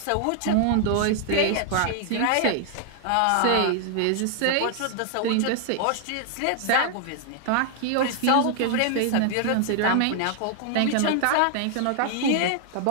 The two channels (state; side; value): different; both; correlation 0.00